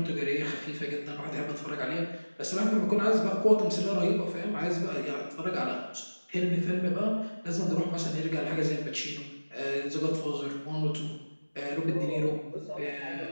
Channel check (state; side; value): inverted; both; correlation -1.00